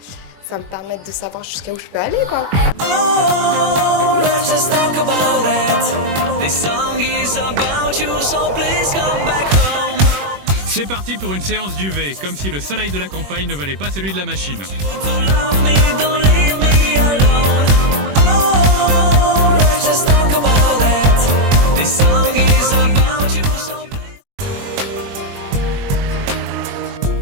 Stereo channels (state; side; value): late; left; 21 ms